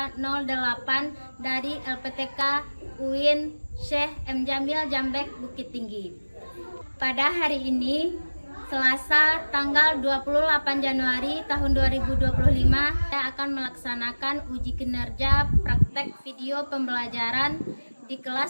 dari LPTK UIN Syekh M. Jamil Jambek Bukit Tinggi. Pada hari ini, Selasa tanggal 28 Januari tahun 2025, saya akan melaksanakan uji kinerja praktek video pembelajaran di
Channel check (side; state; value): both; inverted; correlation -1.00